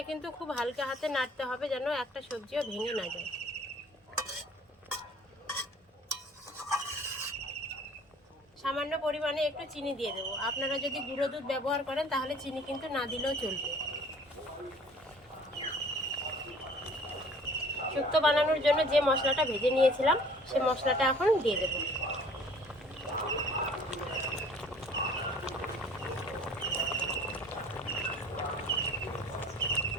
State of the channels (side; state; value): both; normal; correlation 0.51